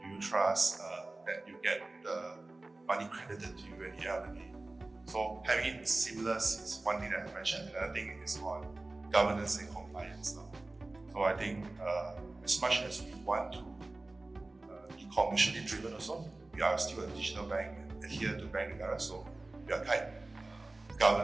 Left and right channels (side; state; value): left; quieter; 3.0 dB